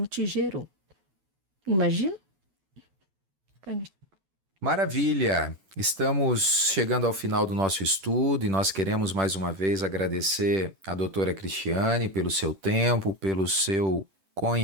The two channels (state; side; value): late; left; 10 ms